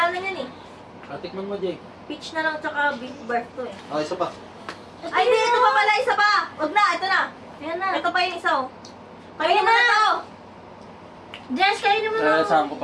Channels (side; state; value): both; identical; correlation 1.00